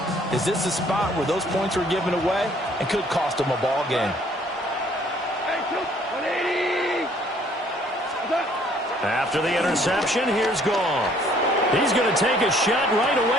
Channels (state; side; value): normal; both; correlation 0.60